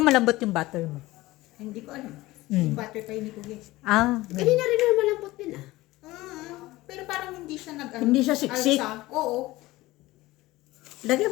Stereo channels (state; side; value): quieter; right; 18.7 dB